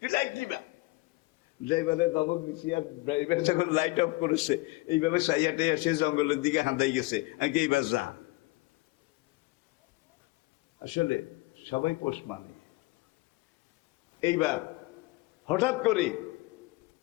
তুই লাইট নিবা। ড্রাইভারের দমক দিছি, আর ড্রাইভার যখন লাইট অফ করেছে, এইভাবে সাইয়াটে এসে জঙ্গলের দিকে হাঁদাই গেছে। আমি এইবার যা। আসলে সবাই পোষ মানে। এইবার হঠাৎ করে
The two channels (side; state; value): right; quieter; 22.1 dB